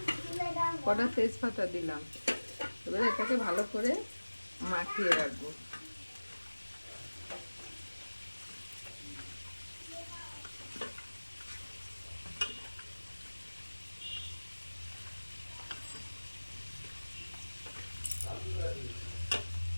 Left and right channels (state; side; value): inverted; both; correlation -1.00